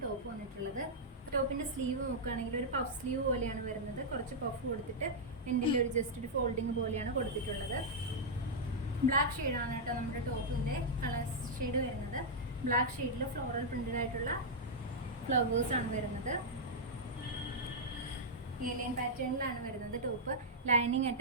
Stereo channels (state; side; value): normal; both; correlation -0.07